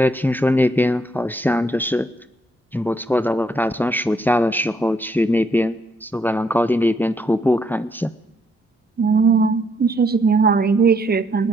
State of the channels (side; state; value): both; normal; correlation 0.72